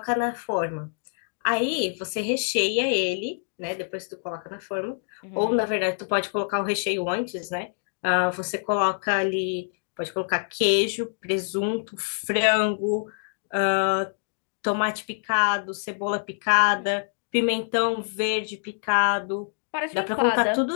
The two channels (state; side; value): silent; right; digital silence